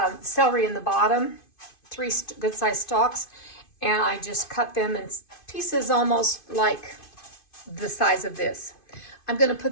celery in the bottom, 3 good-sized stalks, and I just cut them in pieces almost like the size of this. I'm gonna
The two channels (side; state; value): right; late; 2.5 ms